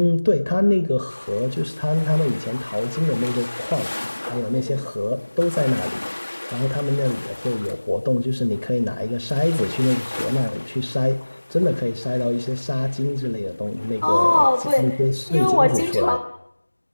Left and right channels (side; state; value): both; inverted; correlation -1.00